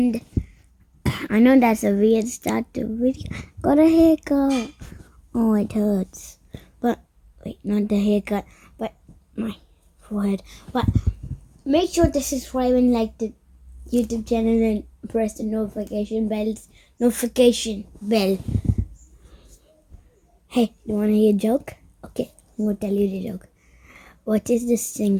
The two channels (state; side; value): identical; both; correlation 1.00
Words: I know that's a weird start to video. Got a haircut. Oh, it hurts. But wait, not the haircut, but my forehead. But make sure to subscribe and like the YouTube channel and press the notification bell. Hey, you wanna hear a joke? Okay, I'm gonna tell you the joke. What is the